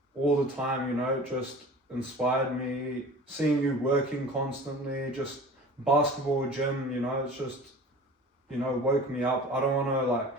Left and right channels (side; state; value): both; normal; correlation 0.40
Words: all the time, you know, just inspired me. Seeing you working constantly, just basketball, gym, you know, it's just, you know, woke me up. I don't want to like,